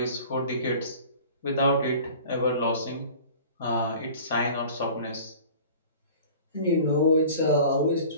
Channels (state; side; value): inverted; both; correlation -0.44